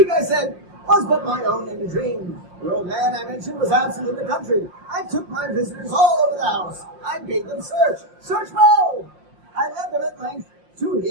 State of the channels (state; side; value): late; left; 5.7 ms